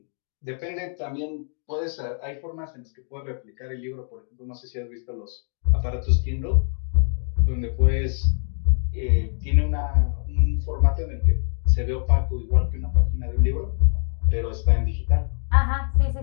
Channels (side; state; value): right; silent; 63 dB below the other